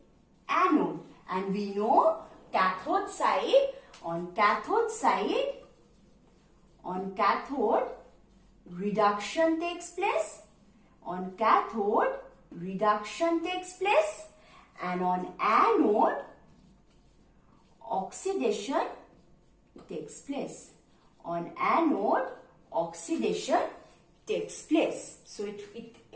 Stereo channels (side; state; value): both; identical; correlation 1.00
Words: anode. And we know cathode side, on cathode reduction takes place, on cathode reduction takes place, and on anode oxidation takes place. On anode oxidation takes place. So